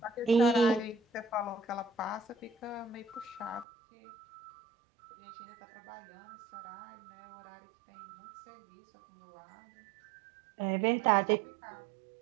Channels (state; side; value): drops out; left; at 3.7 s